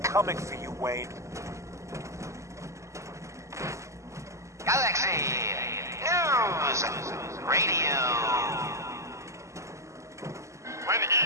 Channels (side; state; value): left; late; 0.14 ms